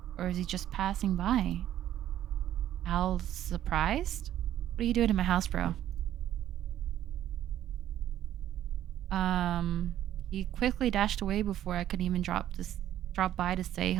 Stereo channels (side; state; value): left; quieter; 11.9 dB